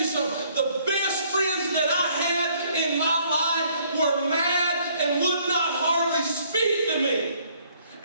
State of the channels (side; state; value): both; inverted; correlation -0.63